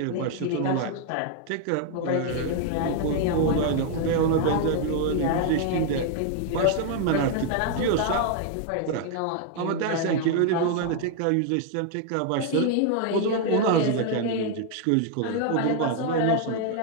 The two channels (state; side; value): different; both; correlation 0.00